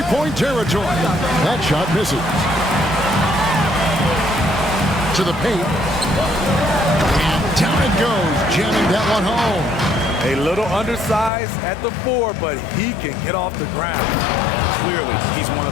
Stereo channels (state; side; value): drops out; right; at 11.3 s